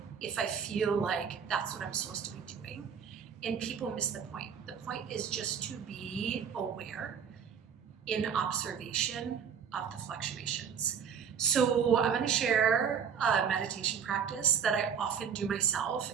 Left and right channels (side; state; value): left; quieter; 7.3 dB